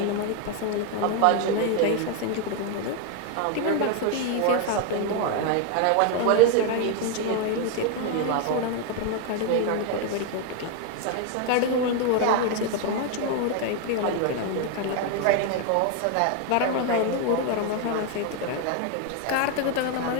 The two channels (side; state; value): both; different; correlation 0.01